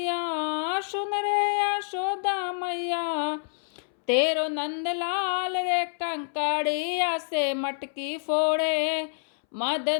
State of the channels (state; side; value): silent; right; 60 dB below the other